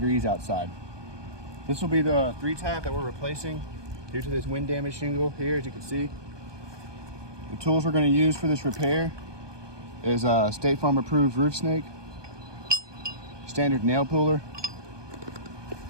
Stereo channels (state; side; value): late; left; 1.2 ms